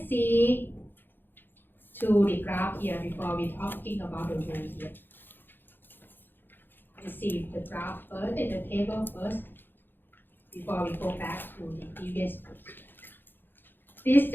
see to the graph here before we talking about the rule here. Let's see the graph first, and the table first, before we go back to the previous page. This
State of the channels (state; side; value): late; right; 0.097 ms